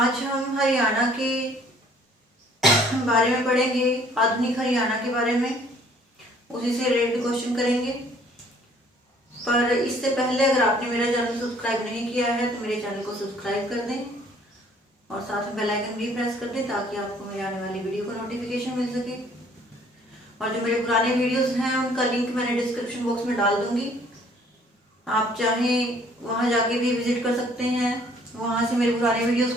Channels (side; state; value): both; normal; correlation 0.58